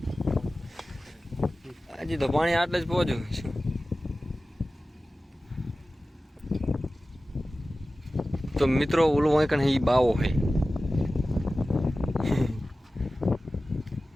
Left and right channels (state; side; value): normal; both; correlation 0.96